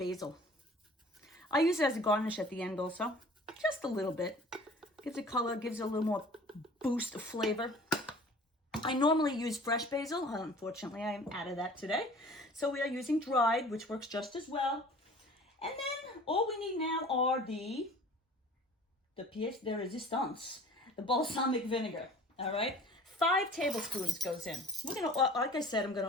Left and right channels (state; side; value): normal; both; correlation 0.46